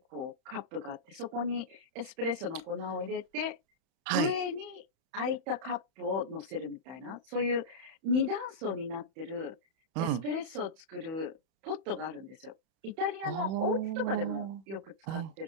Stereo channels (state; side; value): late; left; 31 ms